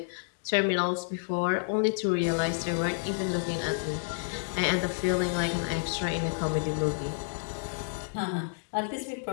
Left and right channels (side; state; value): right; silent; digital silence